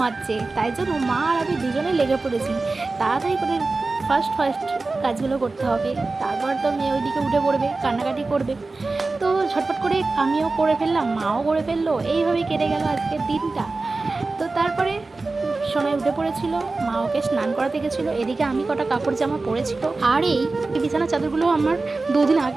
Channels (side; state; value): left; quieter; 3.6 dB